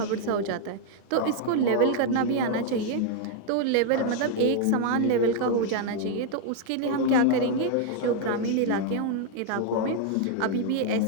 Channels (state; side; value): different; both; correlation 0.00